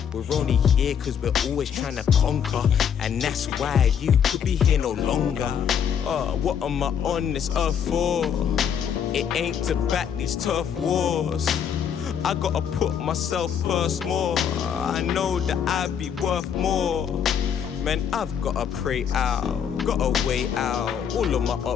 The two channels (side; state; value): right; quieter; 8.0 dB